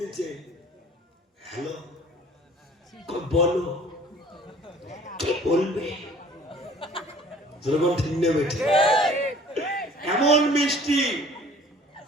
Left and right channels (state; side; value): normal; both; correlation 0.51